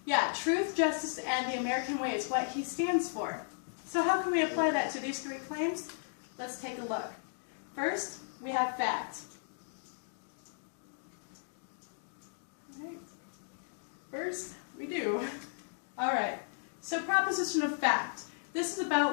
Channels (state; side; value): silent; right; digital silence